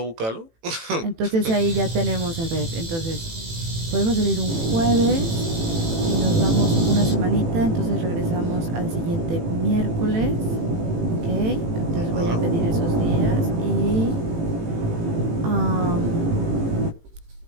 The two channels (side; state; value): left; late; 18 ms